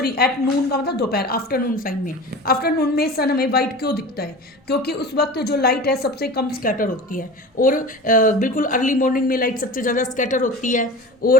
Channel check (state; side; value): normal; both; correlation 0.34